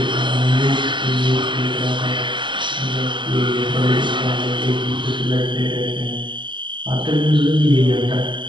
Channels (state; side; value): late; left; 0.23 ms